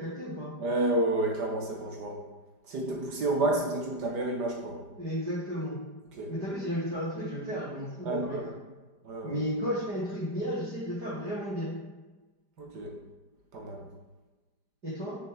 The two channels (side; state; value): left; late; 5.0 ms